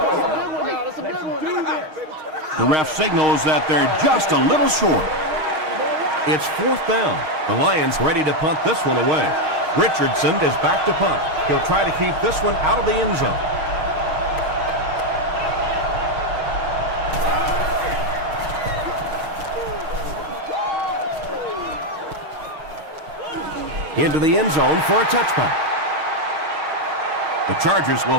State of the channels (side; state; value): left; late; 6.4 ms